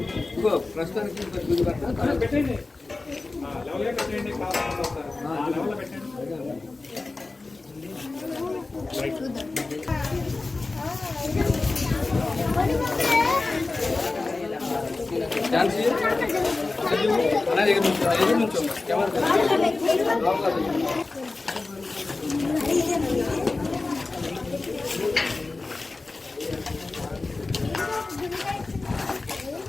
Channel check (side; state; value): right; quieter; 3.5 dB